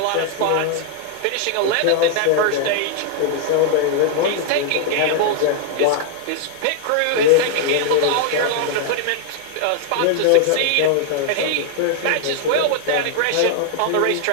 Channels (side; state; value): both; different; correlation 0.00